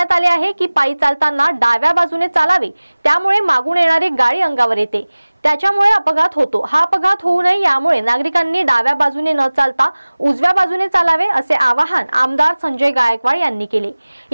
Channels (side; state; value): both; inverted; correlation -1.00